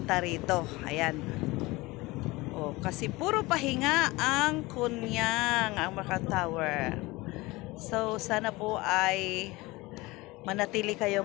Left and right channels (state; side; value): quieter; right; 21.7 dB